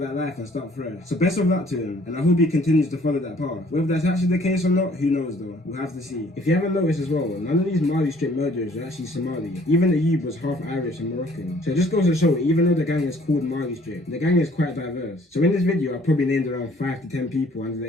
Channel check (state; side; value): normal; both; correlation 0.58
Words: that life and start fresh. So best of luck to him, and I hope he continues to follow that path. Whether that's actually the case or not, who knows though. We'll have to see. If you haven't noticed as well, none of these Malistrip murderers are actually Somali. Even Ayub was half Irish and Moroccan. So it just goes to show, even though the gang is called Malistrip, the gang is quite diverse. So in this video, I probably named around 5 to 10 people under